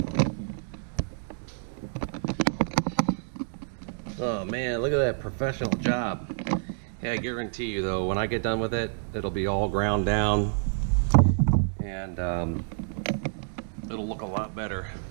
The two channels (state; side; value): silent; left; digital silence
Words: Oh man, look at that professional job. Yeah, I guarantee you though, when I get done with it, it'll be all ground down and it'll look a lot better.